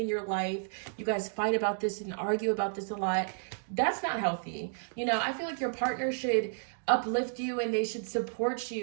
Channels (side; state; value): left; silent; digital silence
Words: your life, you guys fight about this and argue about this a lot, that's not healthy. You know, I feel like your partner should uplift you and they should support